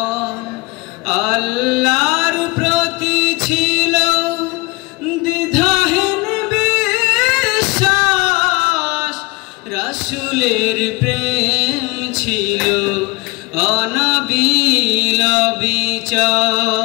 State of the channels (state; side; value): quieter; right; 25.6 dB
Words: আল্লাহর প্রতি ছিল দ্বিধাহীন বিশ্বাস, রাসূলের প্রেম ছিল অনাবিল